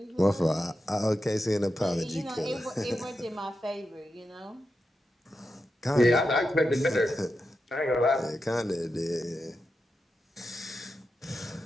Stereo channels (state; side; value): normal; both; correlation 0.88